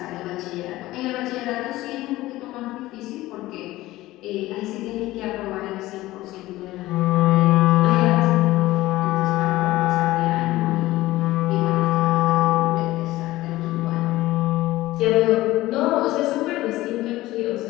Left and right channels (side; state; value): right; quieter; 17.3 dB